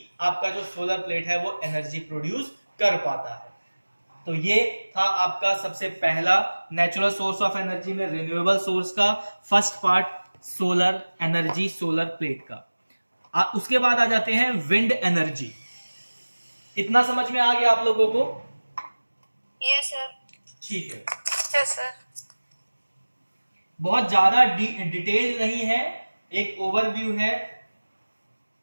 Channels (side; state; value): both; inverted; correlation -1.00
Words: आपका जो सोलर प्लेट है वो एनर्जी प्रोड्यूस कर पाता है। तो ये था आपका सबसे पहला नेचुरल सोर्स ऑफ एनर्जी में रिन्यूएबल सोर्स का first part, solar energy, solar plate का। उसके बाद आ जाते हैं विंड एनर्जी। इतना समझ में आ गया आप लोगों को? Yes sir. ठीक है, यस सर। बहुत ज्यादा डिटेल नहीं है, एक ओवरव्यू है।